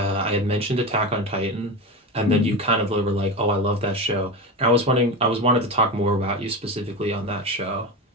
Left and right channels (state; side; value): normal; both; correlation 0.22